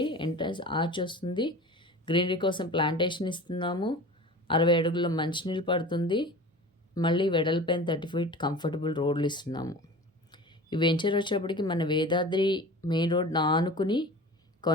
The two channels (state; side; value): normal; both; correlation 0.37